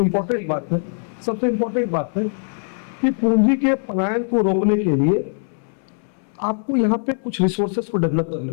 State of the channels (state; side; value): silent; right; 65 dB below the other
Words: बात है कि पूंजी के पलायन को रोकने के लिए आपको यहाँ पे कुछ रिसोर्सेस को डेवलप करने